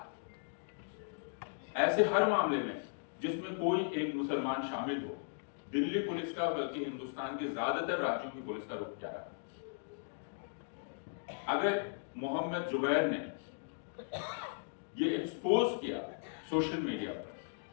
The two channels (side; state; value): right; silent; digital silence